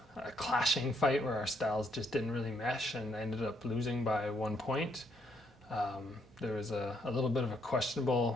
clashing fight where our styles just didn't really mesh, and I ended up losing by 1 point. There was a little bit of a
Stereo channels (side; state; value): both; normal; correlation 0.73